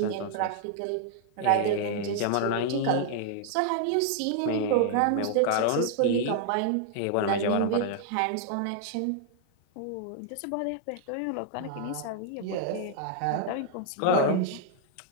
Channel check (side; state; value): both; different; correlation -0.01